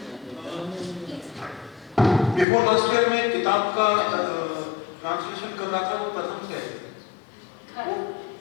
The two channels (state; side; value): drops out; right; at 2.5 s